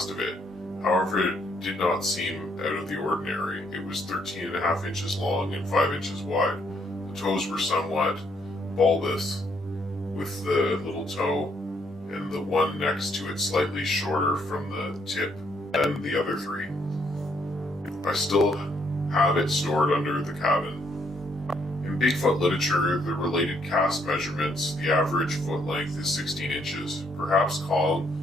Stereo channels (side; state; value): both; normal; correlation 0.71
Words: of it. However, it did not seem out of the ordinary. It was 13.5 inches long and 5 inches wide. The toes were somewhat bulbous, with the little toe and the one next to it slightly shorter from the tip than the other three. I still have it stored under the cabin. In Bigfoot literature, the related cast measurements, the average foot length is 16 inches. Perhaps Kong